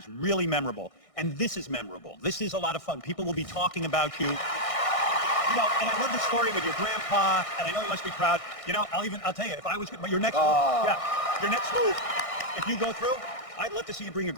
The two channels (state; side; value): late; right; 1.6 ms